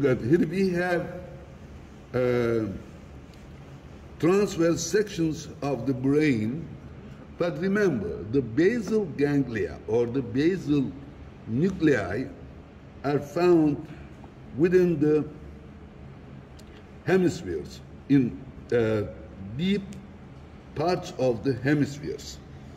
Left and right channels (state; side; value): identical; both; correlation 1.00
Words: at here we have transverse sections of the brain, but remember the basal ganglia or the basal nuclei are found within the hemispheres, in deep parts of the hemispheres.